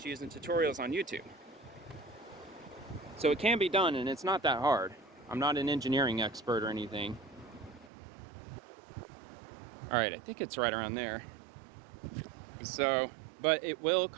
using tutorials on YouTube. So it can be done, and it's not that hard. I'm not an engineering expert or anything. All right, I think it's right around there. So, but it will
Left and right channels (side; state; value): left; drops out; at 7.9 s